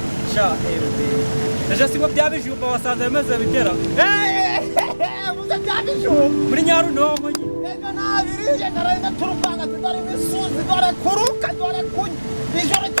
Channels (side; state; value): both; inverted; correlation -1.00